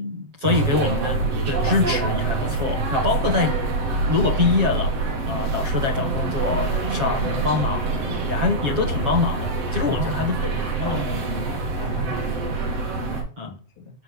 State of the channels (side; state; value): left; late; 7.3 ms